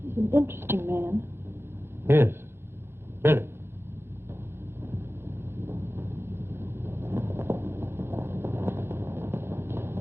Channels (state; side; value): late; left; 0.11 ms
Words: He's an interesting man. Yes, very.